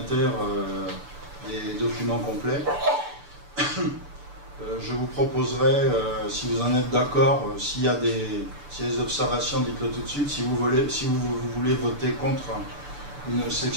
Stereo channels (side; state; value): left; late; 6.9 ms